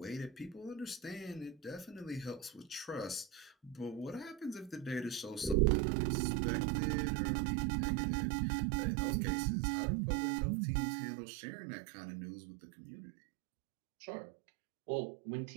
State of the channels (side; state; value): left; drops out; at 5.6 s